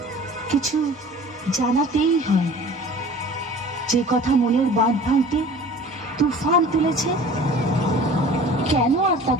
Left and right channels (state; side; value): normal; both; correlation 0.44